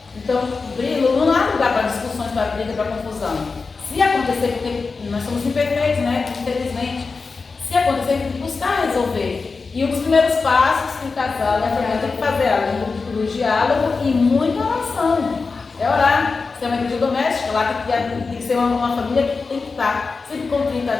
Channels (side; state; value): right; quieter; 4.4 dB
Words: Então, não há lugar para discussões, para briga, para confusão. Se acontecer, porque nós somos imperfeitos, né? Infelizmente, se acontecer, tem que buscar resolver. E um dos primeiros passos que o casal e a família tem que fazer é o diálogo e muita oração. É orar. Se é uma igreja doméstica, lá tem que ser uma família que tem que estar sempre contrita a